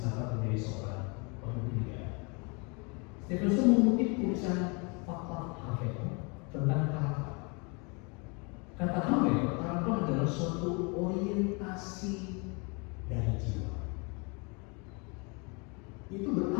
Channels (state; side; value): quieter; right; 31.9 dB